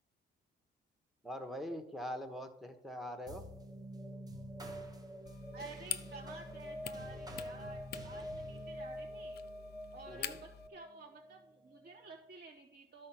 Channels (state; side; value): normal; both; correlation 0.55